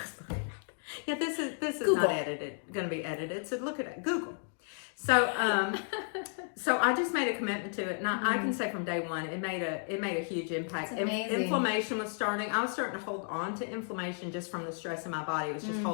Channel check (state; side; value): silent; right; 56 dB below the other